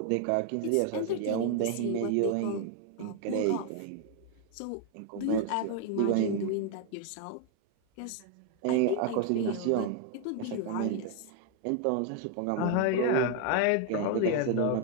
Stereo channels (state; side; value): different; both; correlation 0.00